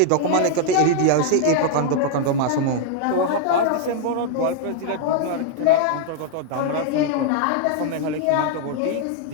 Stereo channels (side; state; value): both; different; correlation -0.01